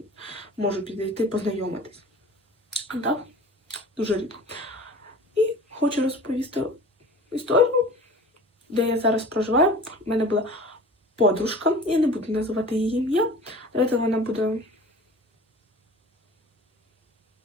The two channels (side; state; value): both; normal; correlation 0.41